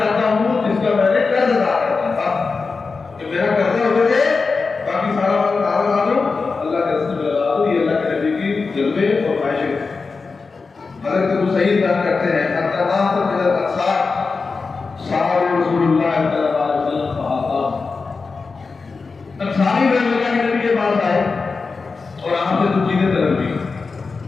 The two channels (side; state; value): right; quieter; 4.4 dB